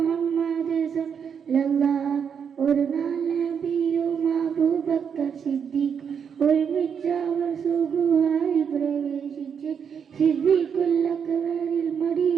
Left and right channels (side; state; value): left; quieter; 7.2 dB